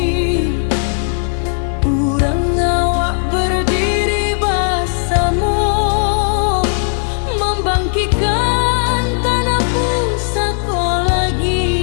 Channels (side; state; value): right; silent; digital silence